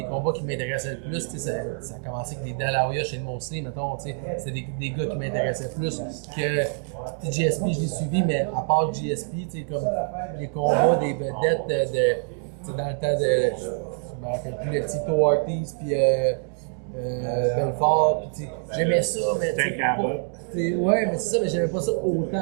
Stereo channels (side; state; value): left; silent; 56 dB below the other